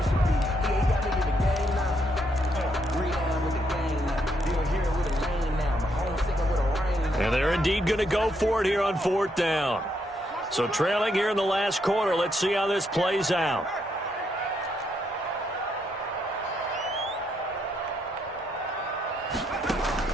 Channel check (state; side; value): normal; both; correlation 0.76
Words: And they're indeed going to go for it here on 4th down. So trailing here in the last quarter. Let's see how this plays out.